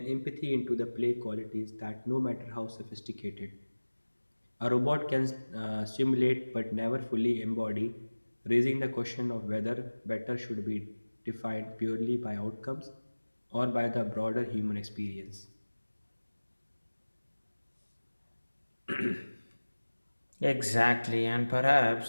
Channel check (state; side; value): inverted; both; correlation -1.00